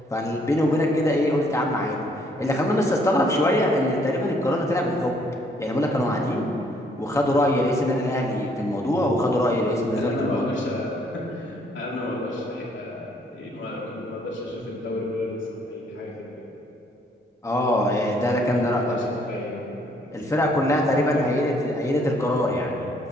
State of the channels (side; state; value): both; normal; correlation 0.65